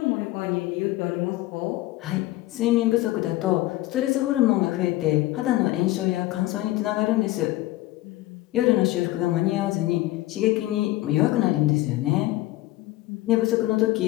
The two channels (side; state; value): right; quieter; 17.4 dB